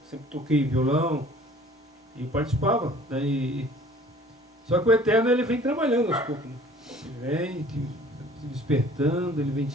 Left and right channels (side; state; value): both; normal; correlation 0.51